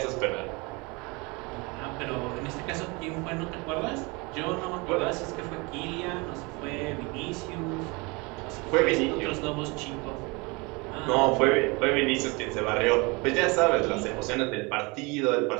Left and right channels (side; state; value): left; quieter; 27.2 dB